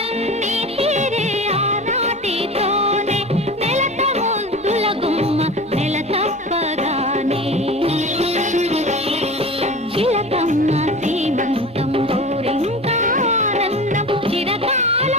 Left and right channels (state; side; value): normal; both; correlation 0.33